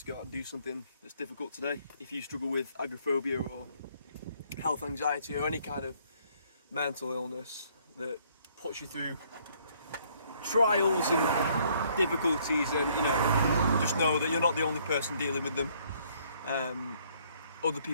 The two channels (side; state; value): both; inverted; correlation -0.64